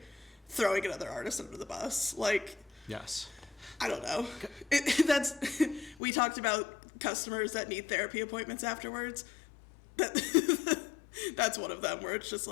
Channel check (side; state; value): right; drops out; at 6.0 s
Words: throwing another artist under the bus. Like, yes. I don't know. We talked about customers that need therapy appointments afterwards. That's one of them, where it's just